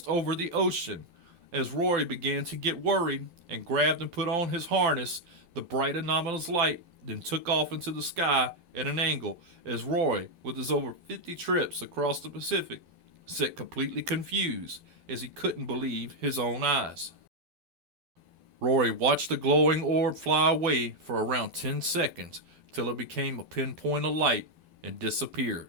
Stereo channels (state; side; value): late; left; 12 ms